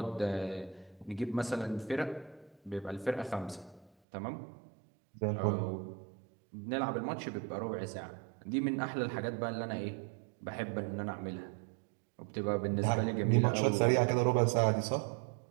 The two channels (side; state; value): left; drops out; at 3.9 s